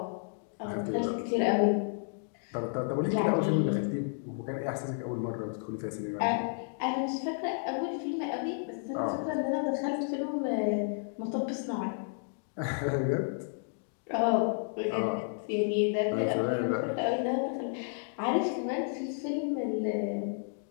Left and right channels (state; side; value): silent; right; digital silence